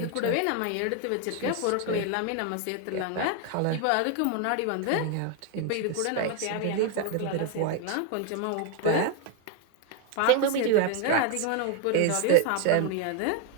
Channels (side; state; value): both; different; correlation 0.01